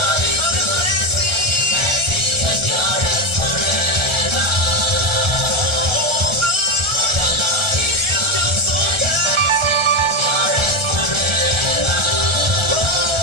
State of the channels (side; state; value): left; late; 1.4 ms